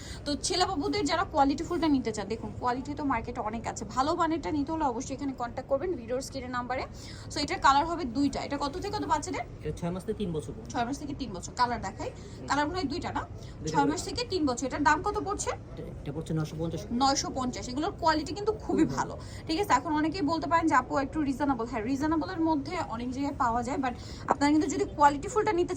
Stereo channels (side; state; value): both; identical; correlation 1.00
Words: তো ছেলেবাবুদের যারা কোয়ালিটি ফুলটা নিতে চান, দেখুন কোয়ালিটি তো মার্কেটে অনেক আছে, ভালো মানেরটা নিতে হলে অবশ্যই এখানে কন্ট্যাক্ট করবেন ভিডিওর স্ক্রিনের নাম্বারে। সো এটার কালার হবে দুইটা। এটা কত থেকে কত বাচ্চাদের? 6 মাস থেকে 3 বছর। 6 মাস থেকে 3 বছর। কালার দেখাই, কালার মনে হয় দুইটা না? 6 মাস থেকে 3 বছর। এটার দাম কত পড়ছে? এটা পড়ছে 950। 950। এগুলোর কোয়ালিটি কিন্তু খুবই ভালো, ঠিক আছে। এখন অনেকেই বলতে পারেন যে আপু একটু রিজনেবল। হ্যাঁ, রিজনেবলের মধ্যে অনেক জায়গায় পাওয়া যায়, বাট আপনারা কিন্তু যদি কোয়ালিটি ফুলটা নিতে